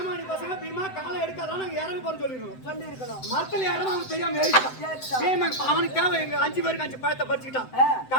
பசங்க பீமா காலை எடுக்காதான் நாங்க இறங்க போற சொல்லிருக்கணும். மரத்துல இறங்க அவன் தெரியாம ஏறிட்டான். அவனுக்கு தேவை எங்க 5 பேருக்கு 5 பழத்தை பறிச்சுக்கிட்டான்.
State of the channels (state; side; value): late; right; 7.8 ms